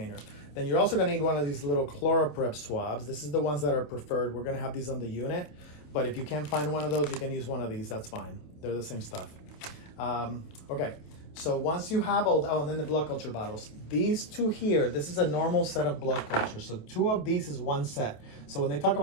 Then you're also going to need one of these little ChloraPrep swabs. This is the ones that are preferred. We're going to have these on the unit, but if you can't find one of those, you can use one of these. That's fine. They're the same stuff. Okay. So once you have and then the blood culture bottles. These two here, this is a normal set of blood cultures. So 2 of these is 1 set. So when they talk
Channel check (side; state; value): right; late; 27 ms